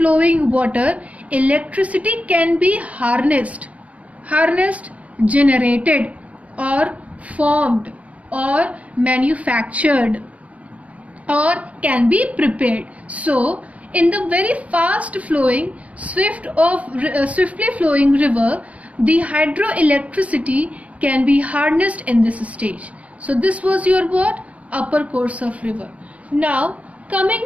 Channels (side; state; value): left; late; 0.067 ms